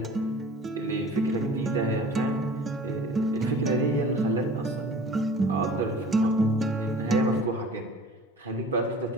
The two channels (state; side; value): normal; both; correlation 0.45